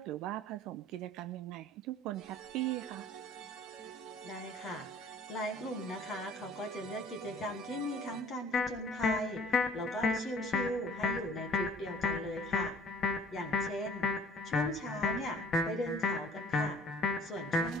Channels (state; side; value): normal; both; correlation 0.52